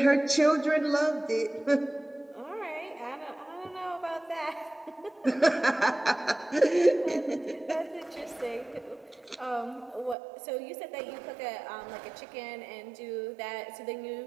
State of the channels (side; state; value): left; drops out; at 10.2 s